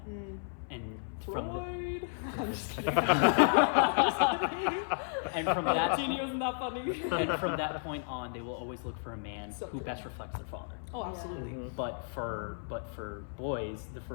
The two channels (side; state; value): right; silent; 56 dB below the other